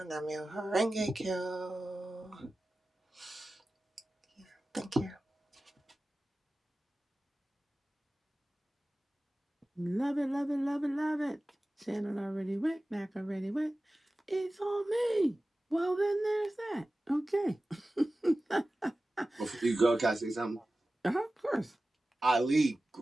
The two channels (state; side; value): normal; both; correlation 0.96